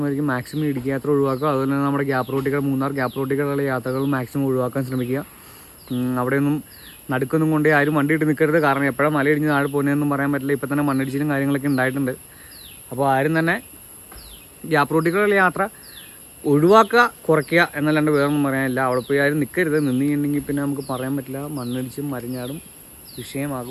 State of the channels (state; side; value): identical; both; correlation 1.00